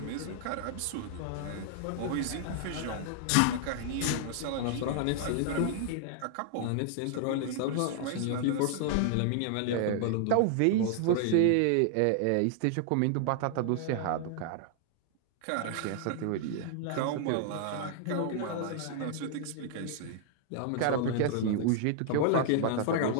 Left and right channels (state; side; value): different; both; correlation 0.00